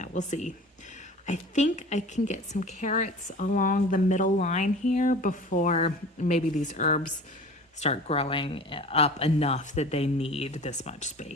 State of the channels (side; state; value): both; normal; correlation 0.40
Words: we'll see. I think I can get some carrots along the middle line here before maybe these herbs start growing up enough that they need this much